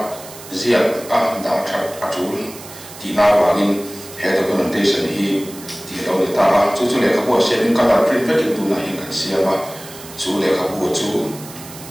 ziat dah cat acul di nawangin head documentation hi di lawan itu cucu lekap buat sharing kalau print itu nahin kan siapa cucu lekap buat cucu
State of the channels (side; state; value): right; noise; hiss, 16 dB below the sound